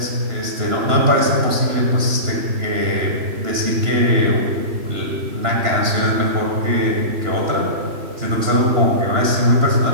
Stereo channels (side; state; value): left; late; 2.9 ms